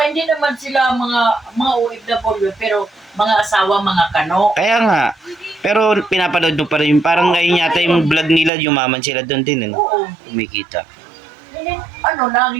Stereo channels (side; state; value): left; drops out; at 8.5 s